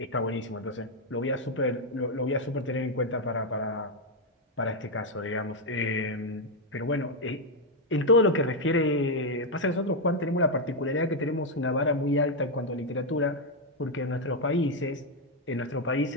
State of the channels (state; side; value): normal; both; correlation 0.02